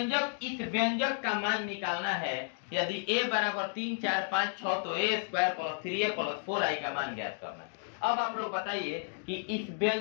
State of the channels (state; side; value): silent; right; 56 dB below the other